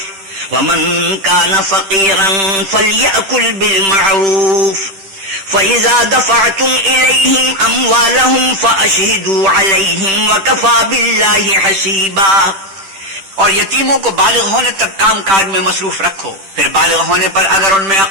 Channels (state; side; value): late; left; 10 ms